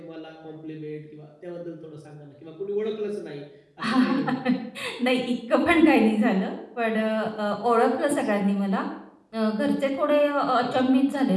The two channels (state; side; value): identical; both; correlation 1.00